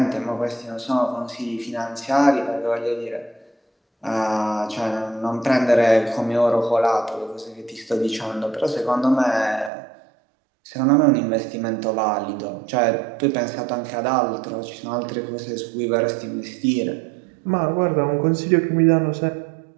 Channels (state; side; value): drops out; left; at 9.7 s